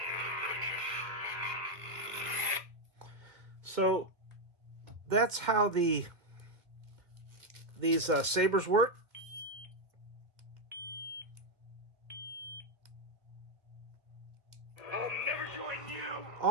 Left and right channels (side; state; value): left; late; 1.5 ms